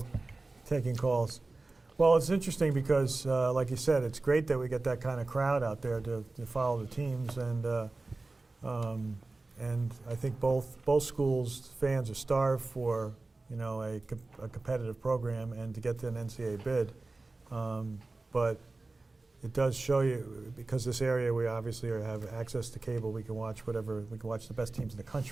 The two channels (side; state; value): left; quieter; 3.3 dB